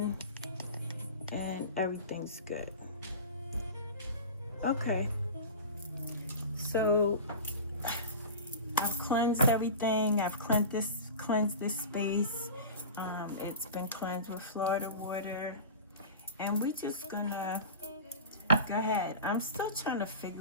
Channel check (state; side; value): inverted; both; correlation -0.32